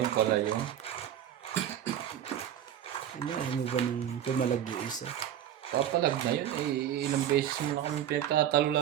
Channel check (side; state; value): left; quieter; 10.5 dB